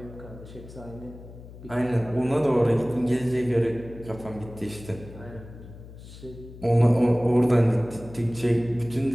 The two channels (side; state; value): left; noise; hum, 16 dB below the sound